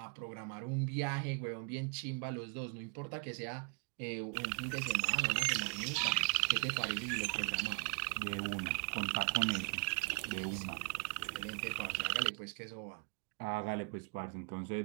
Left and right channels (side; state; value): left; quieter; 36.9 dB